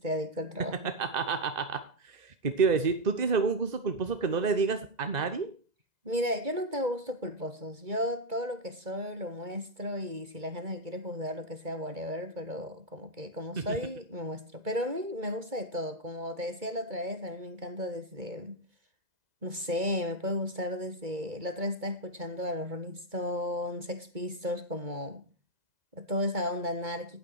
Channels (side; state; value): left; late; 2.2 ms